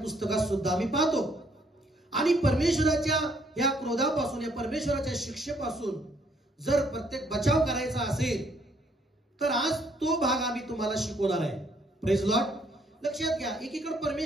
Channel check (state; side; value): normal; both; correlation 0.67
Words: सुद्धा आम्ही पाहतो. आणि परमेश्वराच्या या क्रोधापासून, या परमेश्वराच्या शिक्षेपासून जर प्रत्येक बचाव करायचा असेल तर आज तो भाग आम्ही तुम्हाला शिकवणार आहे. Praise Lord. लक्षात घ्या, एकीकडे